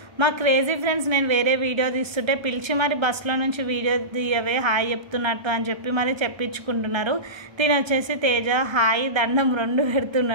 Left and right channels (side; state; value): left; late; 1.3 ms